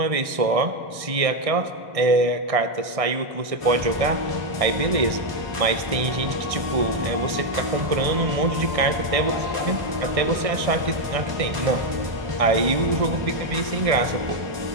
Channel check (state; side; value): late; left; 1.6 ms